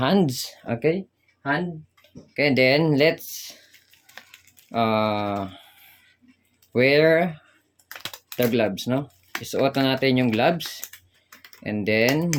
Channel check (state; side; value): identical; both; correlation 1.00